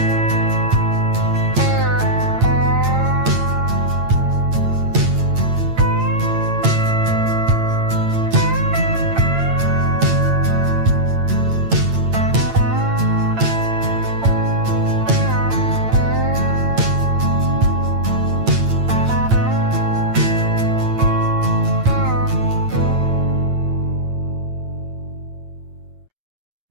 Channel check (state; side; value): late; left; 8.8 ms